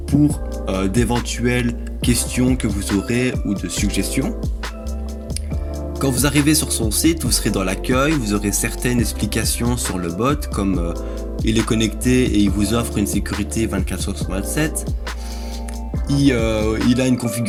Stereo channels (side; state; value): both; identical; correlation 1.00